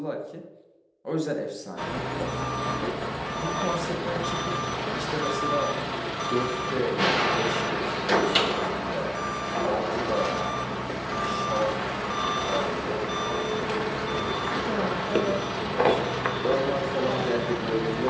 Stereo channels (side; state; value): both; identical; correlation 1.00